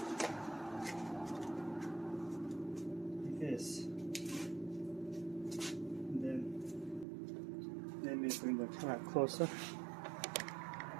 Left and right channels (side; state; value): left; drops out; at 7.1 s